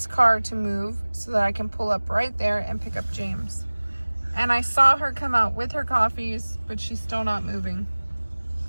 car to move so that I can pull up right there and pick up James. And I saw her come out with her coffees, but she's still not moving.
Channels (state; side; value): inverted; both; correlation -1.00